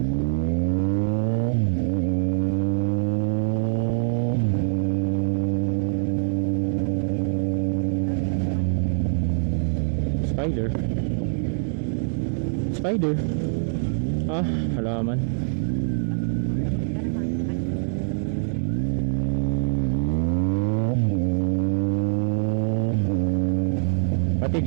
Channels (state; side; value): silent; left; digital silence